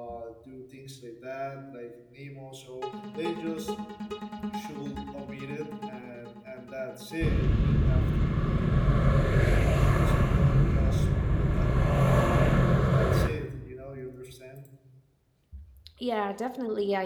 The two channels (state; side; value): identical; both; correlation 1.00